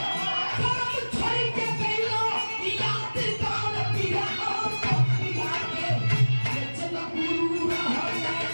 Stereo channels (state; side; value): inverted; both; correlation -1.00